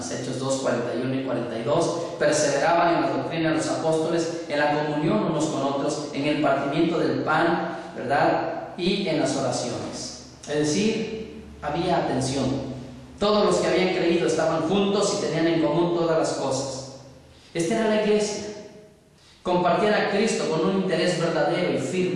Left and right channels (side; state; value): both; identical; correlation 1.00